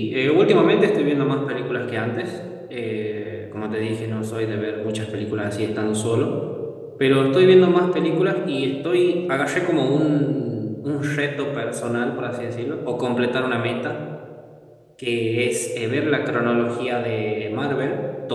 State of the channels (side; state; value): both; identical; correlation 1.00